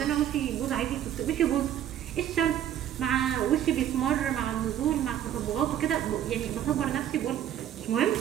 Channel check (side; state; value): left; quieter; 10.9 dB